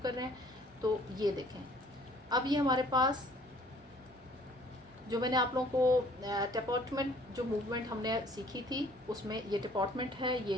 कर रहे हैं। तो ये देखें, अब ये हमारे पास जो मैंने आप लोगों को डिपार्टमेंट जो मूवमेंट हमने सीखी थी उसमें ये डिपार्टमेंट है, ये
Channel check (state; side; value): normal; both; correlation 0.56